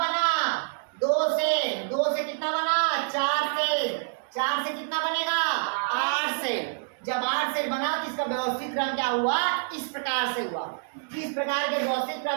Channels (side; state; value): left; silent; digital silence